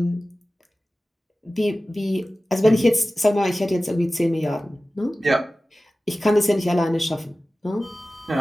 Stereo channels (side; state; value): both; normal; correlation 0.96